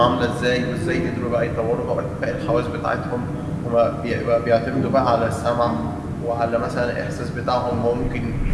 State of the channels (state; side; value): identical; both; correlation 1.00